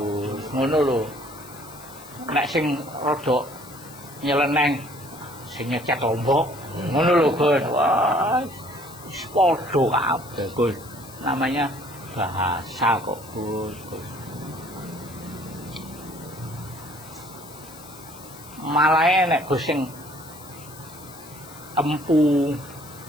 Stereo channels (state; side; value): noise; left; hiss, 19 dB below the sound